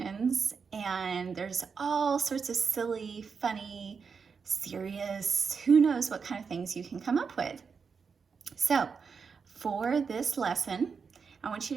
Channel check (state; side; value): quieter; left; 5.7 dB